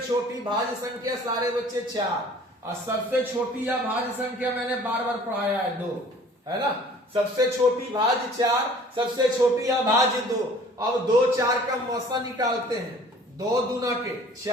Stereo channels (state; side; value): normal; both; correlation 0.50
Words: भाज्य संख्या सारे बच्चे 4 और सबसे छोटी अभाज्य संख्या मैंने बार बार पढ़ाया है 2, है ना। सबसे छोटी भाज्य 4, सबसे छोटी अभाज्य 2। अब 2 4 का मौसा निकालते हैं, 2 दूना के